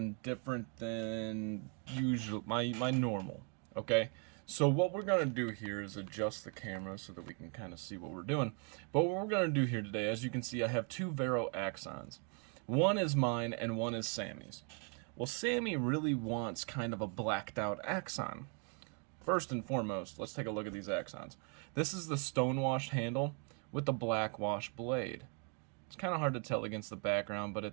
different than usual, my normal, okay? So what we're going to do here is adjust the camera so that we can kind of see what we're doing. But what we're going to do here today, as you can see, I have two Vero axons. One is mine and one is Sammy's. Well, Sammy really wants kind of a blacked out axon. First and foremost, let's take a look at these axons. This is the stonewashed handle with the black wash blade. It's kind of hard to tell against the background, but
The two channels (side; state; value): left; quieter; 39.4 dB